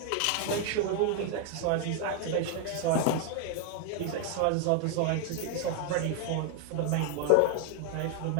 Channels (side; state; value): both; different; correlation 0.00